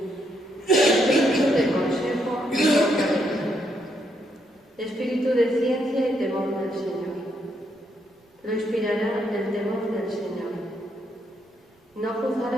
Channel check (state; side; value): normal; both; correlation 0.76